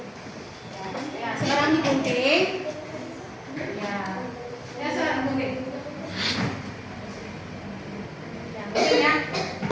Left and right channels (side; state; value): both; identical; correlation 1.00